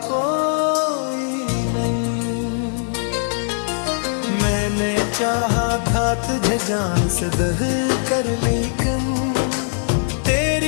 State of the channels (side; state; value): right; silent; digital silence